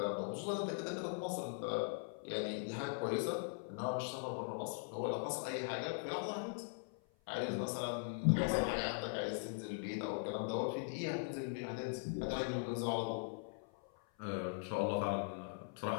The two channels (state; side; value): silent; right; 50 dB below the other